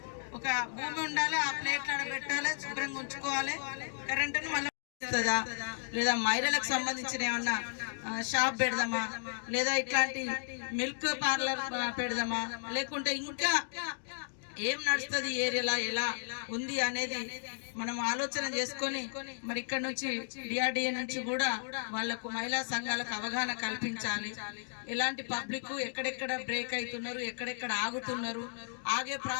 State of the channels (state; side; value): silent; right; digital silence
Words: ఒక భూమి ఉండాలి, ఆ ప్లేట్లు పెట్టాలి, శుభ్రంగా ఉంచుకోవాలి. కరెంటును మళ్ళీ లేదా మహిళలకు సంబంధించిన ఏమన్నా షాప్ పెడదామా, లేదా ఇట్లాంటి మిల్క్ పార్లర్ పెడదామా, లేకుంటే ఇంకా ఏం నడుస్తుంది ఏరియాలో, ఎలా ఉంది అనేది మనం ఆలోచన చేసుకొని మరి ఇక్కడ నుంచి DRDA నుంచి కూడా వాళ్లకు మహిళా సంఘాలకు అవగాహన కల్పించాలి. ఎలాంటి పబ్లిక్ ఎక్కడెక్కడ బ్రేక్ అవుతున్నారు, ఎక్కడెక్కడ ఆగుతున్నారు, ఆగే